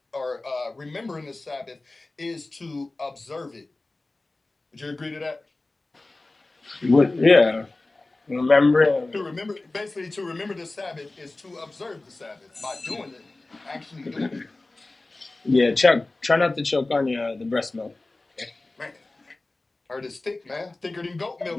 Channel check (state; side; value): quieter; right; 3.1 dB